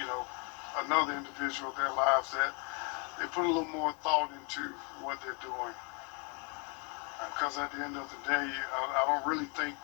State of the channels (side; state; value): right; quieter; 34.1 dB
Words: another individual their lives, that they put a little more thought into what they're doing. Because at the end of the day, I don't really think